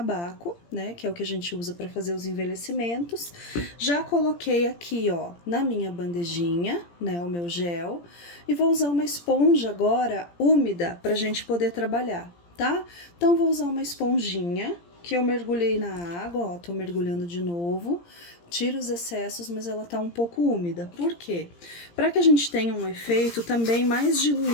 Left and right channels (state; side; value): late; right; 17 ms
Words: né? Que é o que a gente usa para fazer os envelhecimentos. Já coloquei aqui, ó, na minha bandejinha, né, o meu gel. E vou usar uma esponja agora úmida pra gente poder trabalhar, tá? Então, vou usar uma esponjinha que eu mergulhei na água, ó, tô mergulhando de novo, tiro os excessos, mas ela tá um pouco úmida. Por quê? Para que a gente tenha um efeito também mais